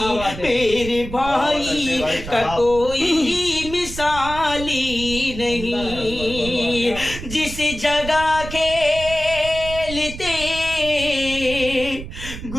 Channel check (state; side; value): noise; right; rumble, 11 dB below the sound